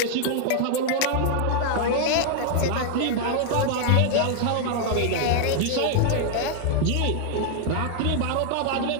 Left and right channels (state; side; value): different; both; correlation 0.00